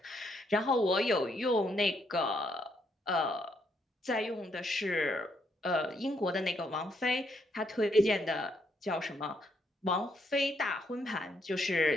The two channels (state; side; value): normal; both; correlation 0.74